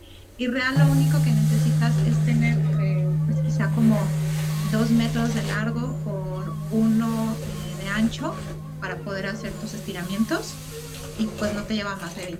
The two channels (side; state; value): both; identical; correlation 1.00